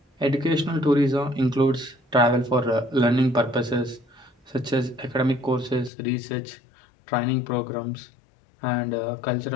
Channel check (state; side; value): drops out; right; at 5.9 s